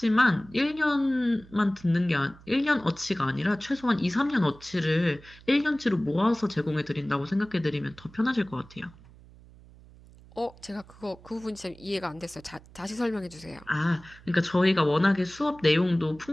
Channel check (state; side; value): noise; right; hum, 23 dB below the sound